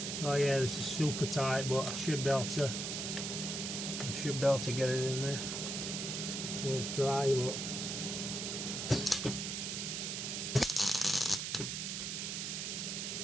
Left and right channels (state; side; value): noise; right; hiss, 3 dB below the sound